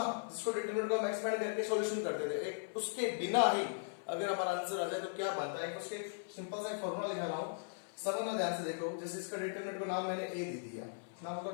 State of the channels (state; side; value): silent; right; 52 dB below the other